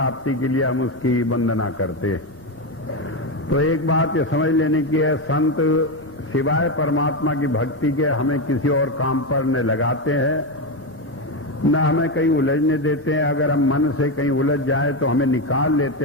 के लिए हम उसकी वंदना करते हैं। तो एक बात ये समझ लेने की है, संत सिवाय परमात्मा की भक्ति के हमें किसी और काम पर न लगाते हैं, न हमें कहीं उलझने देते हैं। अगर हम मन से कहीं उलझ जाए तो हमें निकाल लेते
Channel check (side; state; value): left; noise; rumble, 28 dB below the sound